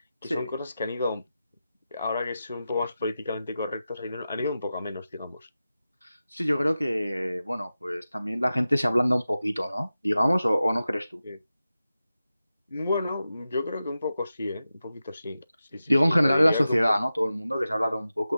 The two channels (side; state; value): both; inverted; correlation -0.93